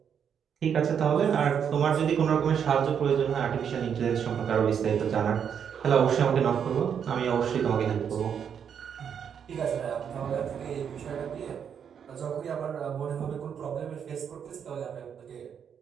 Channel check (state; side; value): quieter; left; 7.8 dB